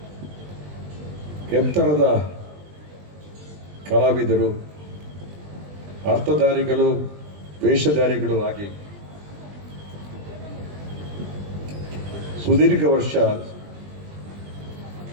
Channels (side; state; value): left; late; 20 ms